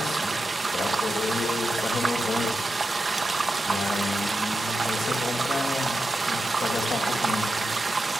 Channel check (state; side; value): normal; both; correlation 0.90